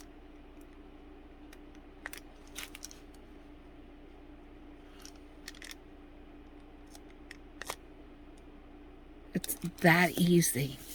It's that easy.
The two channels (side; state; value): both; identical; correlation 1.00